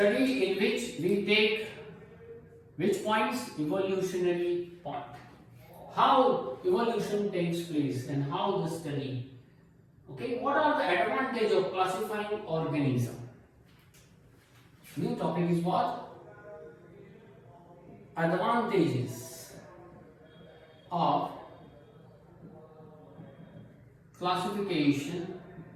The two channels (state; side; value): identical; both; correlation 1.00